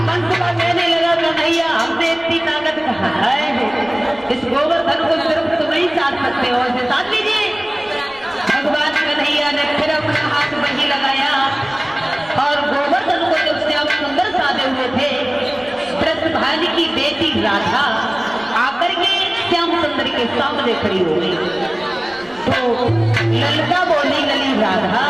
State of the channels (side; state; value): right; noise; rumble, 27 dB below the sound